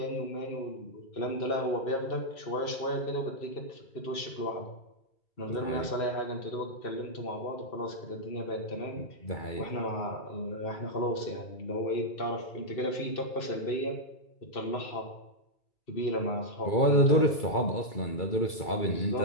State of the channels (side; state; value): right; late; 2.3 ms